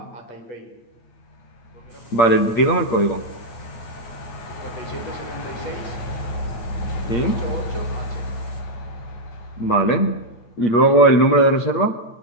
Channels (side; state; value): right; late; 8.6 ms